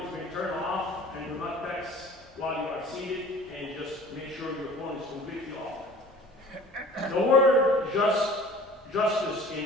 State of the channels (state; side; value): normal; both; correlation 0.46